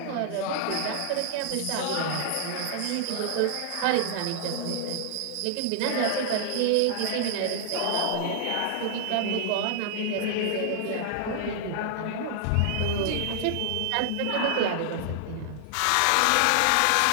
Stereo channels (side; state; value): both; different; correlation -0.01